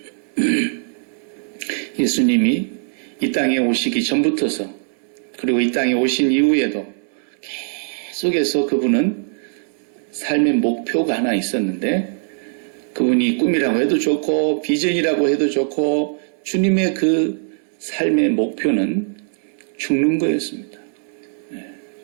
예수님이 이 땅에 오시기 전부터서 그리고 이 땅에 오신 이후에도 계속해서 그분은 삶의 목표가 하나 있었는데 그분이 꿈이라고 해도 좋고 비전이라고 해도 좋고 주님의 그 삶의 목표는 죽는 거였습니다.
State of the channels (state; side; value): silent; left; 65 dB below the other